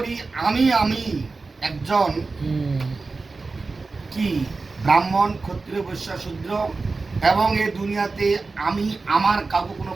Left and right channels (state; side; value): quieter; left; 3.9 dB